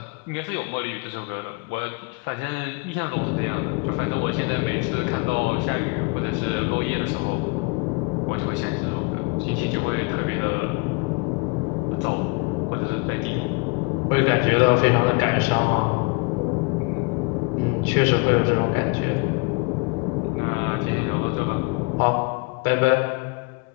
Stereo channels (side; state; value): right; quieter; 32.0 dB